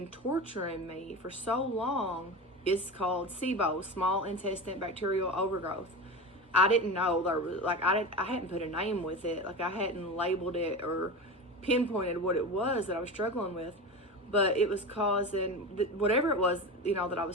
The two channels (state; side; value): normal; both; correlation 0.26